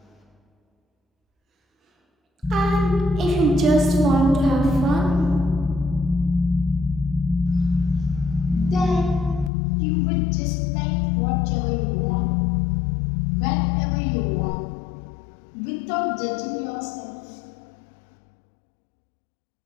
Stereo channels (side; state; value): right; drops out; at 9.5 s